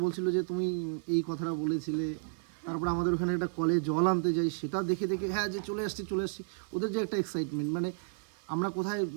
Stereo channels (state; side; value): silent; left; 56 dB below the other